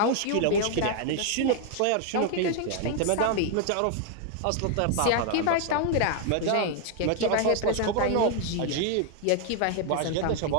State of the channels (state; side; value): different; both; correlation 0.00